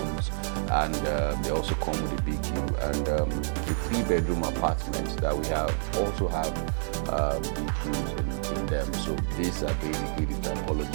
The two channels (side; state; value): left; silent; digital silence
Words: and they also come with a big view. And the 3-bedroom apartments that we have also have big views in them. So these are really the